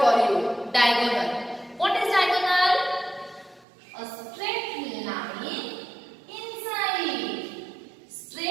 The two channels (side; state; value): left; drops out; at 3.7 s